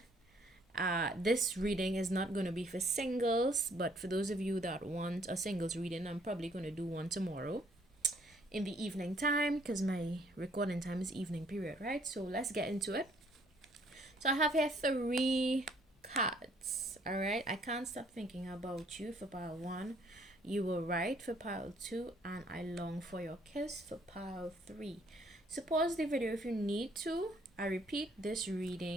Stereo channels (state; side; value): normal; both; correlation 0.64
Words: This reading is not going to be for singles, but for those of you that want a singles reading, I'm probably going to do one tomorrow in the evening time because my recording time is evening period, right? So let's get into it. So I have here 3 cards, all right? I can't stop thinking about you for pile 1. You were right for pile 2, and I long for your kiss for pile 3. So pause the video if you need to. I repeat, this